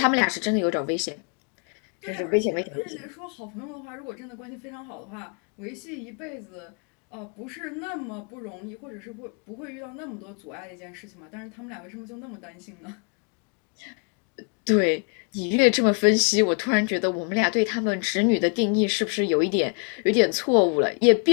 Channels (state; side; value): quieter; right; 38.3 dB